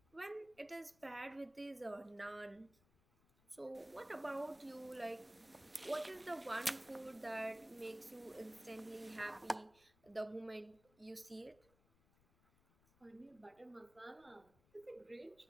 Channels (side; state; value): left; noise; rumble, 28 dB below the sound